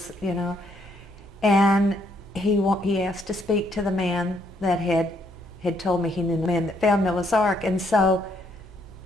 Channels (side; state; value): both; normal; correlation 0.71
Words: And he asked to speak to the man that had told me he knew the man that found Noah's Ark. And so